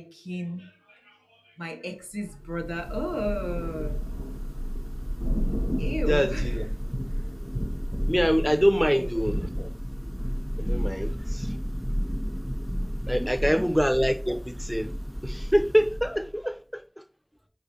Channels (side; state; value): both; identical; correlation 1.00